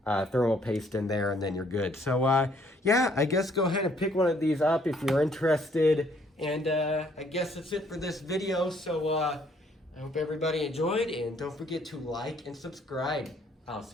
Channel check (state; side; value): normal; both; correlation 0.65